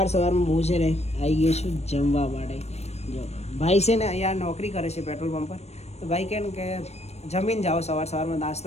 હું છે ને આવી ગયો છું જમવા માટે. જો ભાઈ છે ને અહીંયા નોકરી કરે છે પેટ્રોલ પંપ પર. તો ભાઈ કહે ને કે જમીને જાઓ, સવારમાં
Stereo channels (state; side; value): late; right; 0.31 ms